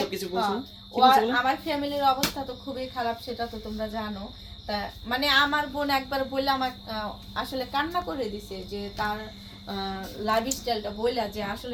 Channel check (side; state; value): both; identical; correlation 1.00